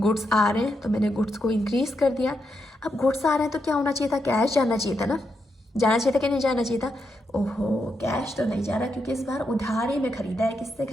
आ रहे हैं, तो मैंने गुड्स को इंक्रीज कर दिया। अब गुड्स आ रहे हैं तो क्या होना चाहिए था, कैश जाना चाहिए था ना, जाना चाहिए था कि नहीं जाना चाहिए था। ओहो, कैश तो नहीं जा रहा, क्योंकि इस बार उधारी में खरीदा है। किससे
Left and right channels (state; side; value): normal; both; correlation 0.83